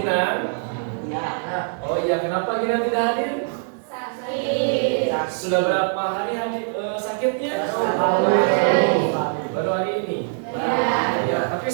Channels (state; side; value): silent; left; digital silence